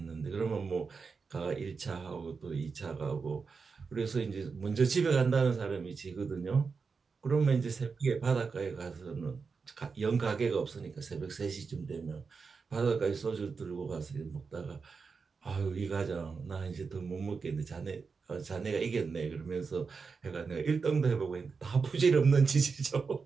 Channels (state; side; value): quieter; left; 5.1 dB